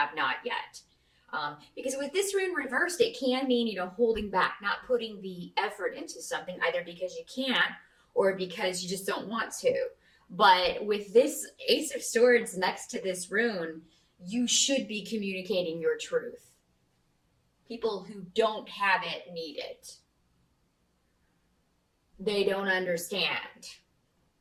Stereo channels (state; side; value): identical; both; correlation 1.00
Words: not yet. Because with this rune reversed, it can mean, holding back, not putting the effort into something, either because you can't or because you just don't want to. But with this Ace of Swords next to this rune, you should be communicating your truth. People who don't have it need it. They don't understand.